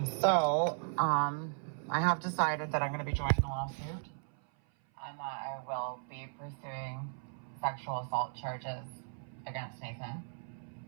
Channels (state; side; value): silent; left; 54 dB below the other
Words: So, I have decided that I'm going to be joining a lawsuit and that I will be pursuing sexual assault charges against Nathan.